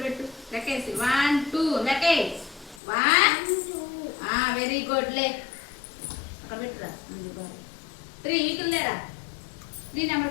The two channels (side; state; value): right; drops out; at 2.8 s